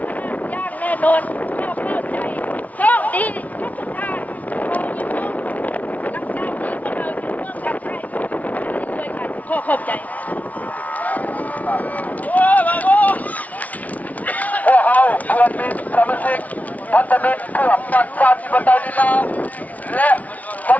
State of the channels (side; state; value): right; late; 0.071 ms